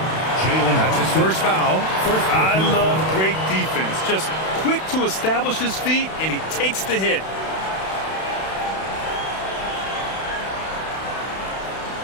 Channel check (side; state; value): right; late; 31 ms